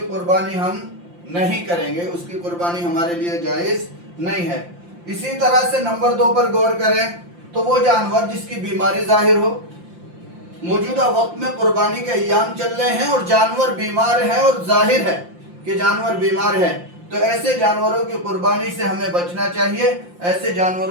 قربانی ہم نہیں کریں گے، اس کی قربانی ہمارے لیے جائز نہیں ہے۔ اسی طرح سے نمبر 2 پر غور کریں تو وہ جانور جس کی بیماری ظاہر ہو۔ موجودہ وقت میں قربانی کے ایام چل رہے ہیں اور جانور بیمار ہے اور ظاہر ہے کہ جانور بیمار ہے، تو ایسے جانوروں کی قربانی سے ہمیں بچنا چاہیے، ایسے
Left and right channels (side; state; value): left; late; 5.7 ms